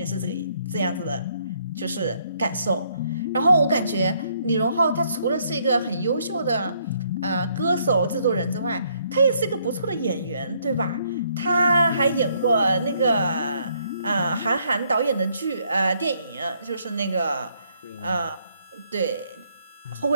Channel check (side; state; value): both; inverted; correlation -0.70